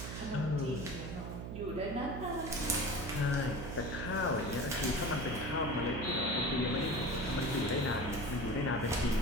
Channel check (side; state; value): right; noise; hum, 7 dB below the sound